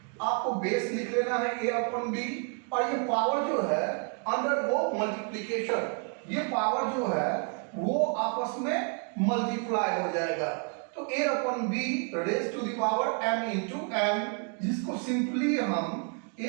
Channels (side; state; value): left; quieter; 39.5 dB